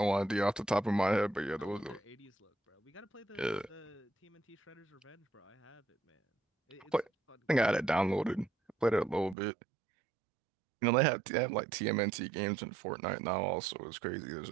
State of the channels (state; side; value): drops out; left; at 9.3 s